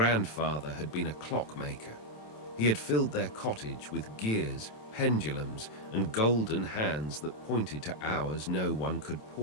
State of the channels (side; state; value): right; late; 27 ms